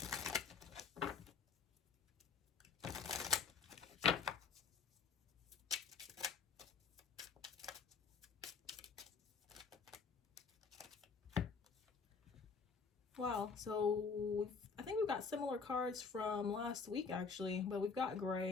Wow, so I think we've got similar cards from last week actually, but we've got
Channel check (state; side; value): quieter; right; 5.3 dB